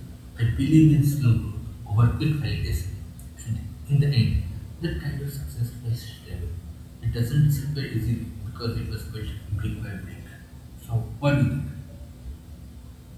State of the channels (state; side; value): identical; both; correlation 1.00